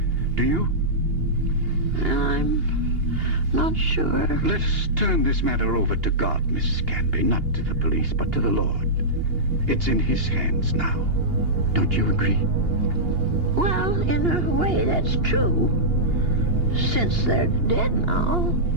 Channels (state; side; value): late; left; 2.8 ms